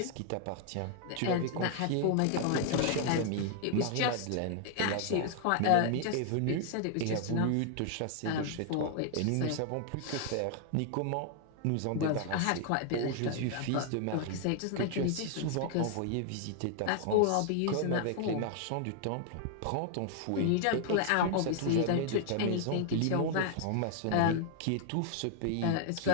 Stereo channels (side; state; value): both; different; correlation 0.00